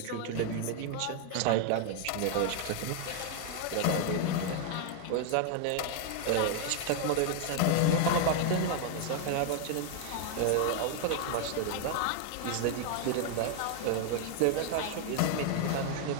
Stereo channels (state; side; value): different; both; correlation 0.00